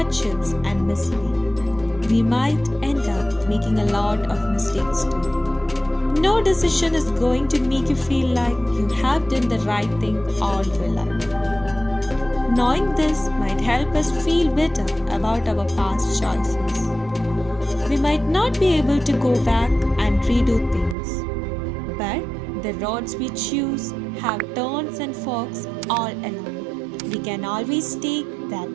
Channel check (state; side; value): drops out; left; at 21.0 s